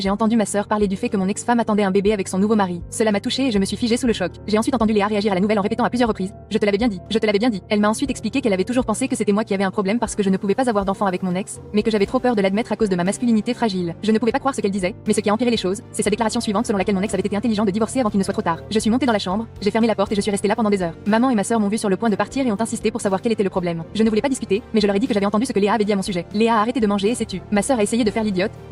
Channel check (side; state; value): both; identical; correlation 1.00